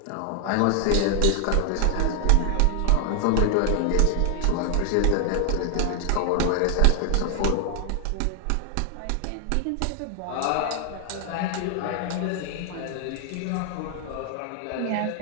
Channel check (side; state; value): both; different; correlation 0.00